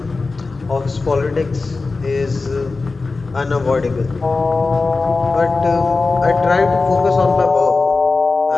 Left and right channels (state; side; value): quieter; right; 3.8 dB